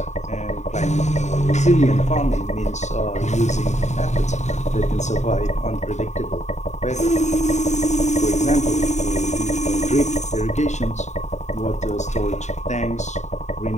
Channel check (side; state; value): right; late; 0.34 ms